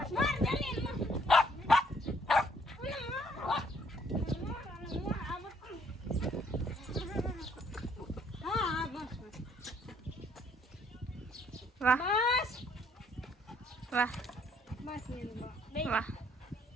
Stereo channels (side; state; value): both; normal; correlation 0.65